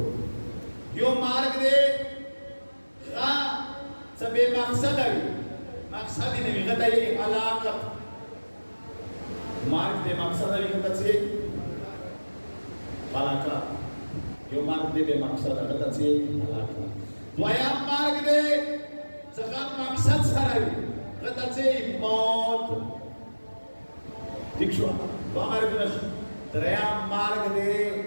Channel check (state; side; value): inverted; both; correlation -1.00